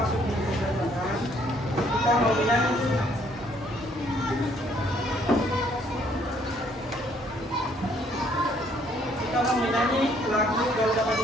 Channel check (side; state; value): both; normal; correlation 0.65